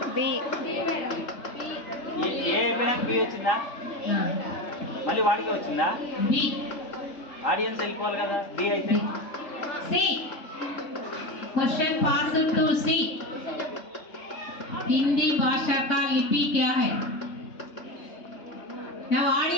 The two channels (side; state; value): right; late; 3.8 ms